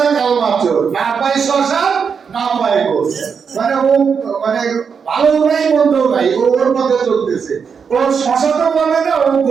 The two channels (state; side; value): quieter; left; 6.3 dB